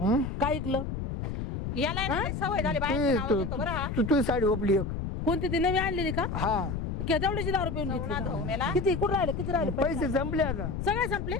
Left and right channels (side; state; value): left; noise; rumble, 4 dB below the sound